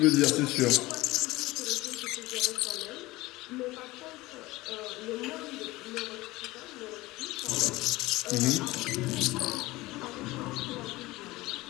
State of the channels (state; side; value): quieter; right; 19.8 dB